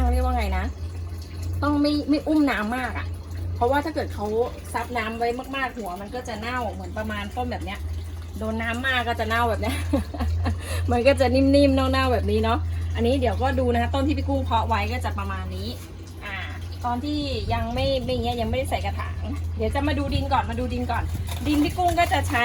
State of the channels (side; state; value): both; identical; correlation 1.00